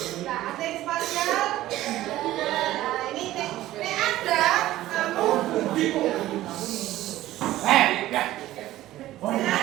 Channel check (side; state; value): left; quieter; 15.1 dB